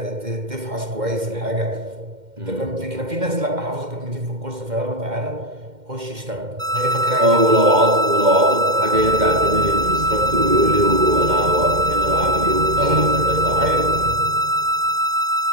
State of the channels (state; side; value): late; left; 2.1 ms